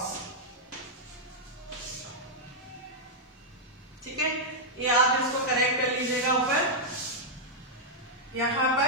ठीक है, ये आप इसको करेक्ट कर लीजिएगा ऊपर। यहां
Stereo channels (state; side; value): normal; both; correlation -0.05